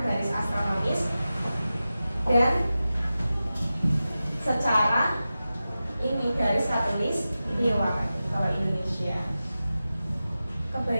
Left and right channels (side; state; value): both; inverted; correlation -0.94